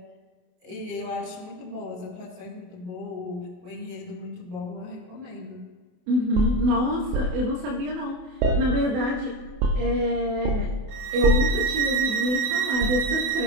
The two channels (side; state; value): left; late; 28 ms